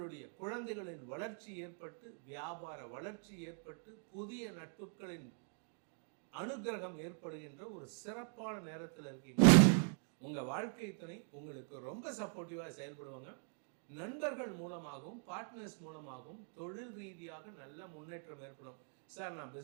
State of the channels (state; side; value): silent; left; 50 dB below the other